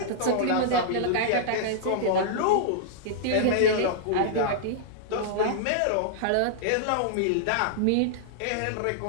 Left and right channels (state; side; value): different; both; correlation -0.02